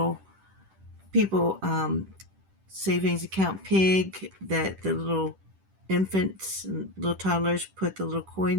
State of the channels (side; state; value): left; late; 10 ms